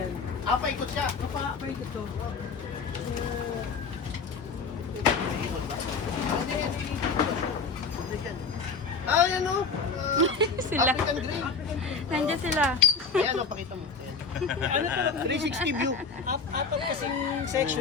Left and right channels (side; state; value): right; quieter; 4.9 dB